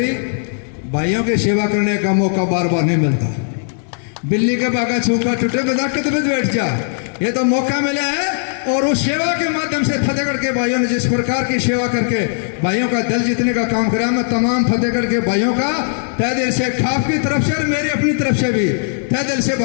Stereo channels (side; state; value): right; silent; digital silence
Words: भाइयों की सेवा करने का मौका बार बार नहीं मिलता। बिल्ली के बागा छूका टूटे बजा के तो बैठ जा, ये तो मौका मिला है। और उस सेवा के माध्यम से फतेहगढ़ के भाइयों ने जिस प्रकार की सेवा करके भाइयों का दिल जीतने का काम करा, मैं तमाम फतेहगढ़ के भाइयों का तहे दिल से, खाप की तरफ से और मेरी अपनी तरफ से भी तहे दिल से